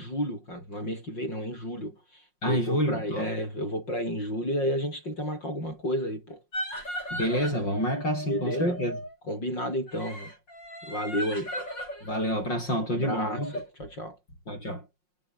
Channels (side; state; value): right; late; 5.6 ms